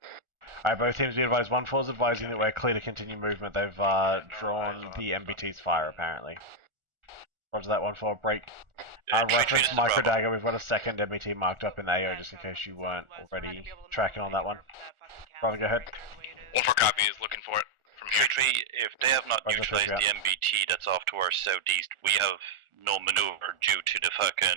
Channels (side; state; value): left; late; 1.4 ms